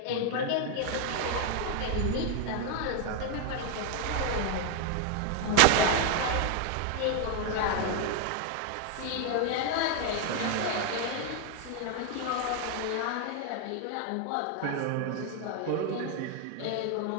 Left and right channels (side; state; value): both; different; correlation 0.01